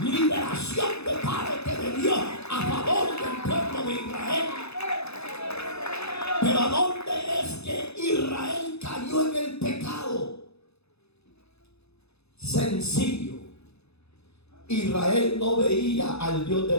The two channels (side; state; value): right; late; 0.79 ms